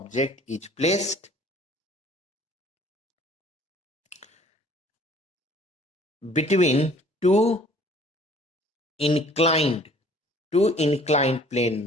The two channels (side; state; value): both; normal; correlation 0.54